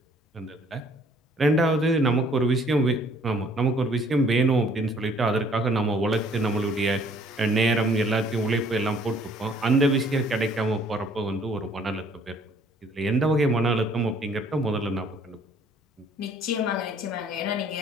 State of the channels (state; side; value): normal; both; correlation 0.59